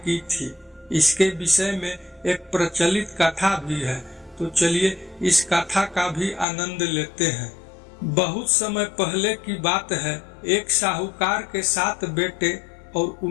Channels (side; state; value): right; drops out; at 6.5 s